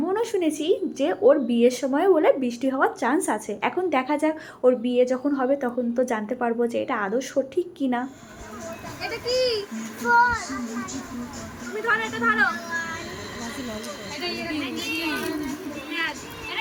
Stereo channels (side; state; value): both; identical; correlation 1.00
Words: শুনেছি যে ওর বিয়ের সময় বলে বৃষ্টি হওয়ার চান্স আছে। এখন দেখা যাক, ওর বিয়ে যখন হবে তখন তো জানতে পারবো যে এটা আদৌ সঠিক কিনা। এটা কি? তুমি ধরো, এটা ধরো। এটা কি?